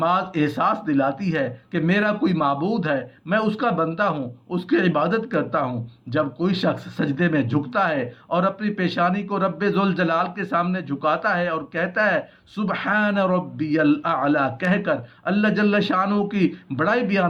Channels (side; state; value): both; identical; correlation 1.00